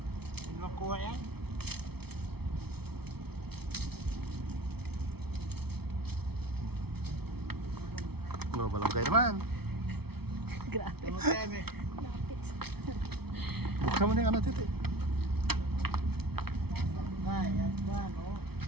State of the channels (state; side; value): late; left; 0.96 ms